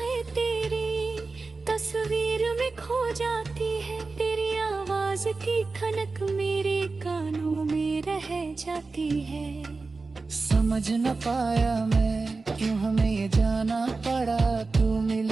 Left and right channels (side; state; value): left; quieter; 3.9 dB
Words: तेरी तस्वीर में खो जाती है, तेरी आवाज की खनक मेरे कानों में रह जाती है। समझ न पाया मैं क्यों हमें ये जाना पड़ा, तू